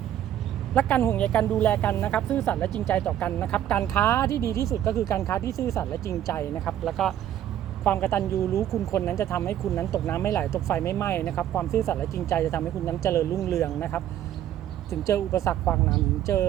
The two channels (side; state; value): left; quieter; 11.4 dB